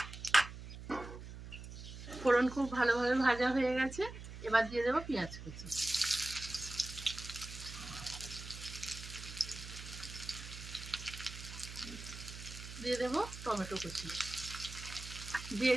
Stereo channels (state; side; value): noise; right; hum, 11 dB below the sound